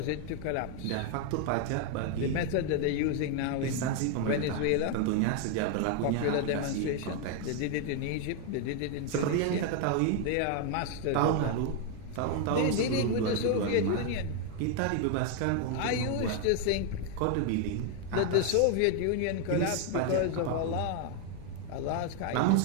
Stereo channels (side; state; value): both; different; correlation 0.01